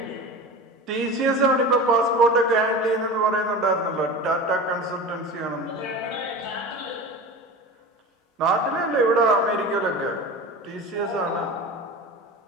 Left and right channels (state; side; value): normal; both; correlation 0.32